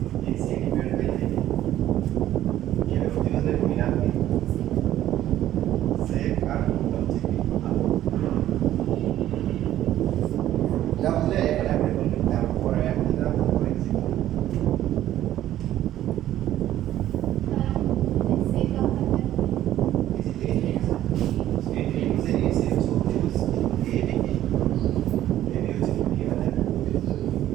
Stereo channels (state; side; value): quieter; left; 12.9 dB